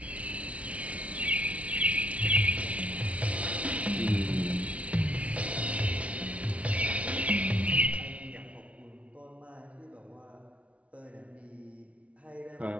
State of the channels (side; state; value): left; late; 0.064 ms